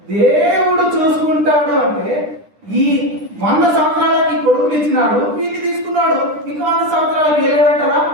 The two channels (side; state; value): left; late; 10 ms